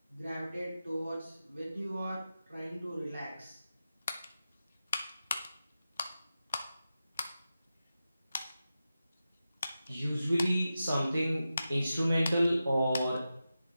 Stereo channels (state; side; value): inverted; both; correlation -0.92